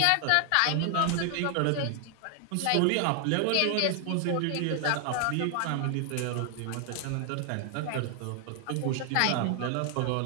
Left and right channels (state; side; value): different; both; correlation 0.00